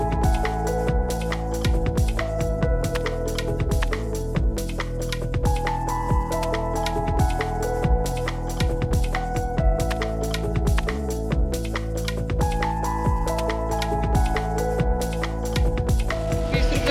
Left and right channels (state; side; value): identical; both; correlation 1.00